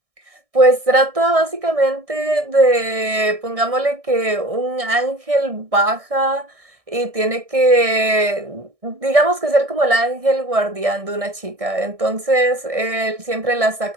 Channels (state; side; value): late; left; 1.6 ms